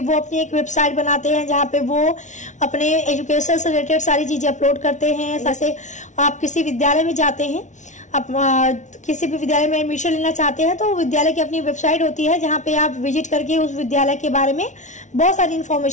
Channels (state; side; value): late; right; 0.36 ms